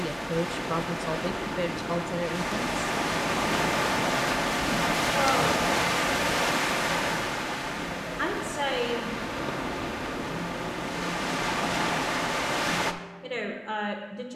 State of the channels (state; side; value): identical; both; correlation 1.00